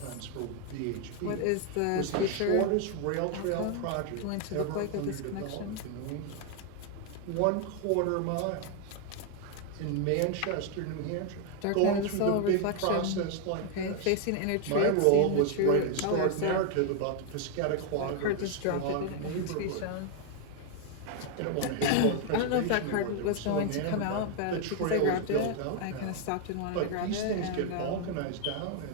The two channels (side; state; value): both; different; correlation 0.00